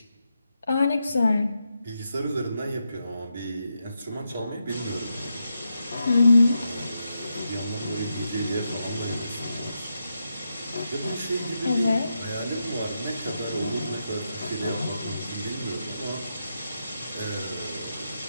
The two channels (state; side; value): inverted; both; correlation -0.86